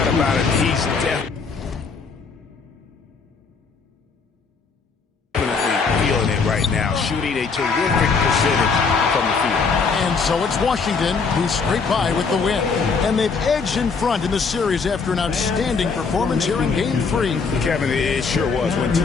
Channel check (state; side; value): quieter; right; 5.0 dB